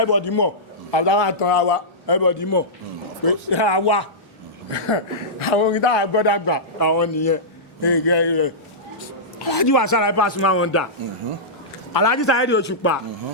mọ̀ àtàwọn àtàrà wa everybody mọ̀ pé àwa àwọn orin táwọn gbọ́dọ̀ gbà àwọn nìyẹn Alhaji Wasiu Alabi Pasuma wọn dà Alhaji Saheed Òṣùpá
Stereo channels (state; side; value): normal; both; correlation -0.14